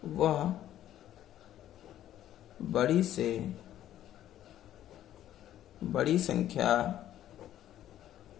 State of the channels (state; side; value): quieter; right; 12.1 dB